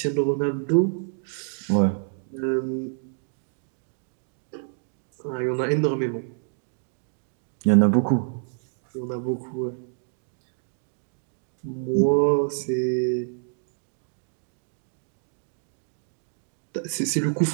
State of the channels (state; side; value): silent; left; 60 dB below the other